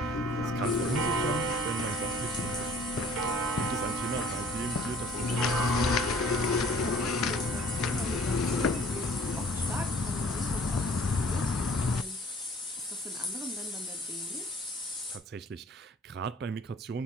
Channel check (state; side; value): normal; both; correlation 0.53